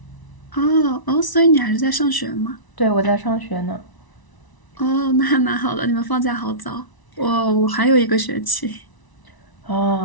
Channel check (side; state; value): right; late; 1.0 ms